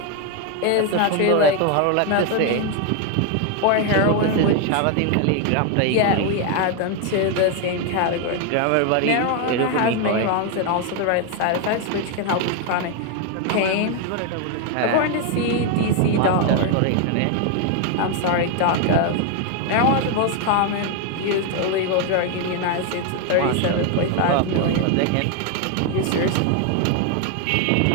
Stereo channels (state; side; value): different; both; correlation 0.01